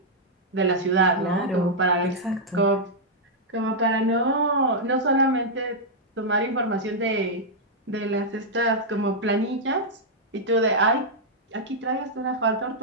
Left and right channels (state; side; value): normal; both; correlation -0.06